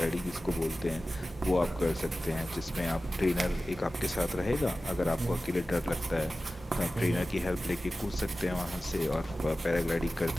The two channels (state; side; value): normal; both; correlation 0.95